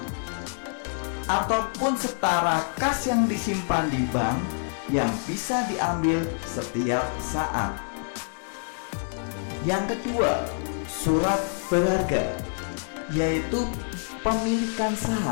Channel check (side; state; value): right; silent; 60 dB below the other